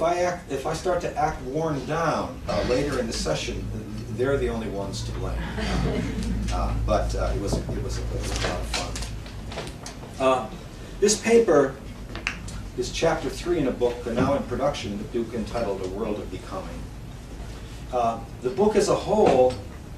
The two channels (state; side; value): identical; both; correlation 1.00